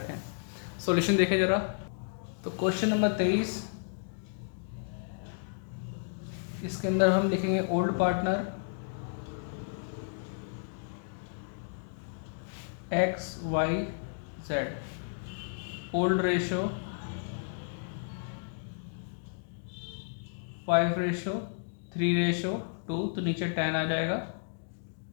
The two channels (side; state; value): right; silent; digital silence